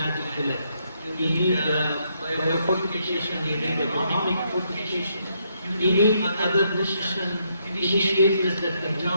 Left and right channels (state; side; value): inverted; both; correlation -0.75